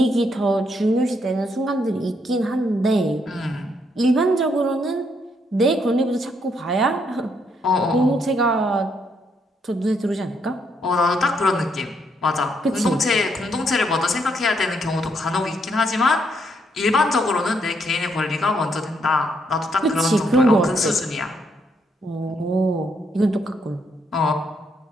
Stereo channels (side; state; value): both; normal; correlation 0.74